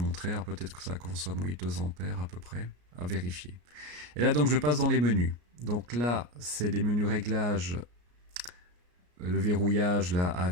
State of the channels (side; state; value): left; late; 34 ms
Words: Alors, peut-être que ça consomme, oui, 2 ampères à peu près, à vérifier. Et là, donc, je passe dans les menus. Donc là, c'est les menus réglages, le verrouillage là